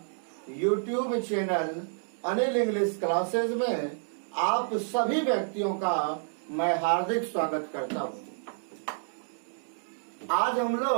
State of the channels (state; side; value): silent; left; digital silence